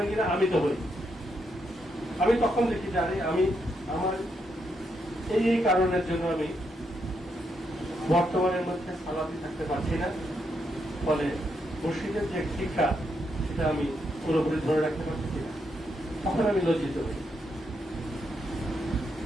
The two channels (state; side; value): normal; both; correlation 0.80